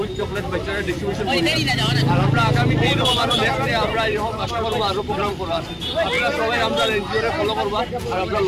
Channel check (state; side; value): identical; both; correlation 1.00